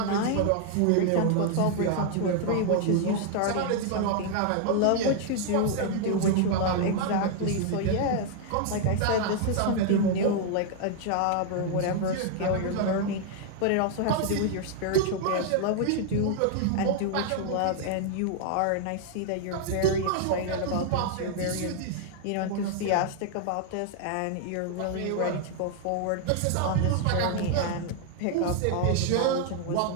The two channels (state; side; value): different; both; correlation 0.00